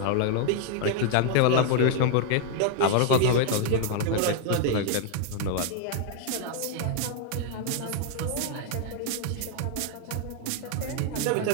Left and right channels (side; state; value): both; different; correlation 0.00